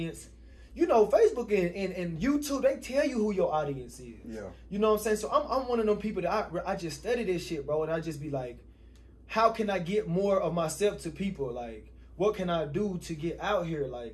You know, Facebook and YouTube, they tell you who your audience is. Yeah. You know what I'm saying? So I'm one of them people that I just study this shit, bro, and I just be like, how can I get more of myself to people? Like, what can I do to get out here?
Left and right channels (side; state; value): both; identical; correlation 1.00